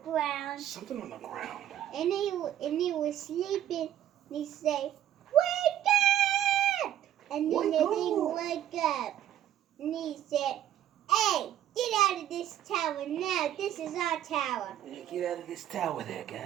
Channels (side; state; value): left; quieter; 11.5 dB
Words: ground. Something on the ground. And he was sleeping. And he said, "Wake up!" And then the thing woke up. And he said, "Hey, get out of this tower now. This is our tower." Get out of this tower there,